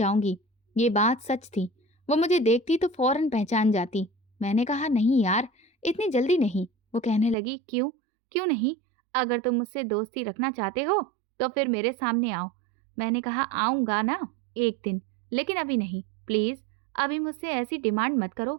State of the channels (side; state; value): left; drops out; at 7.4 s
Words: ये बात सच थी। वो मुझे देखती तो फौरन पहचान जाती। मैंने कहा, नहीं यार, इतनी जल्दी नहीं। वो कहने लगी, क्यों? क्यों नहीं? अगर तुम मुझसे दोस्ती रखना चाहते हो तो फिर मेरे सामने आओ। मैंने कहा, आऊंगा ना एक दिन, लेकिन अभी नहीं, प्लीज अभी मुझसे ऐसी डिमांड मत करो।